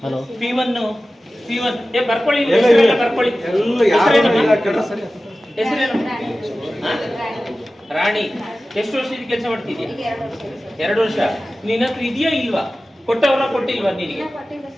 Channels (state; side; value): normal; both; correlation 0.95